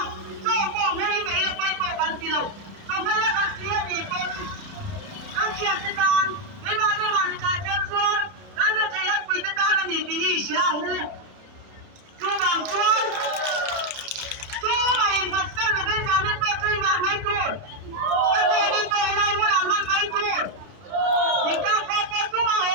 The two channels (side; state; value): left; late; 31 ms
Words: cho cô mấy mấy là quay cô gan gì đâu không phải là gan siết gì con gan siết thế con cái mà này thay chân chuan gan nó thấy là quỳ thế con là gì thì sao nữa chú bằng chuan chú mày thật sự là bây giờ nên tôi chơi vào mấy tuổi bây giờ nên tôi lại muốn làm ăn mấy tuổi thì cao có chú mà